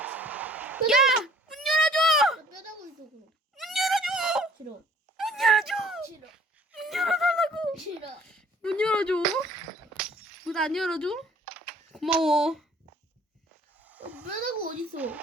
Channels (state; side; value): normal; both; correlation 0.55